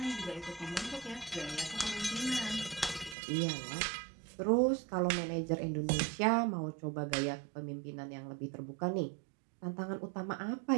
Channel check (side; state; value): left; drops out; at 3.2 s